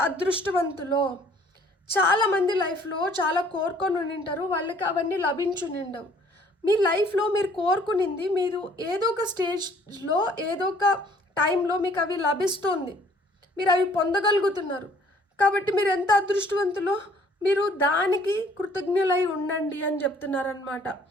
అదృష్టవంతులో. చాలామంది లైఫ్లో చాలా కోరుకొని ఉండింటారు, వాళ్ళకి అవన్నీ లభించునిండవు. మీ లైఫ్లో మీరు కోరుకునింది మీరు ఏదో ఒక స్టేజ్లో ఏదో ఒక టైంలో మీకు అవి లభిస్తుంది, మీరు అవి పొందగలుగుతున్నారు. కాబట్టి మీరు ఎంత అదృష్టవంతులో, మీరు దానికి కృతజ్ఞులై ఉండండి అని చెప్తున్నారనమాట.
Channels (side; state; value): both; normal; correlation 0.58